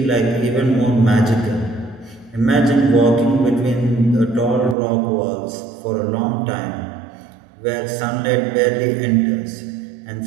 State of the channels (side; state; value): left; drops out; at 4.8 s